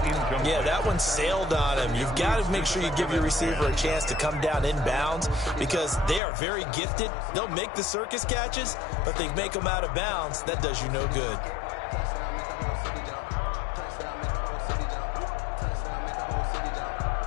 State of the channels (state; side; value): drops out; right; at 6.2 s